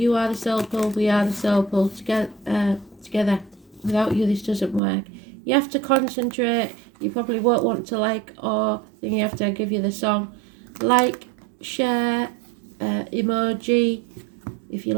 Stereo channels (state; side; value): drops out; left; at 4.8 s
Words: are the soul pole, we are the soul pole. Together. Without you, this doesn't work. You have to concentrate. You probably won't want to like, or then you have to give you the song. Like, share, emoji. If you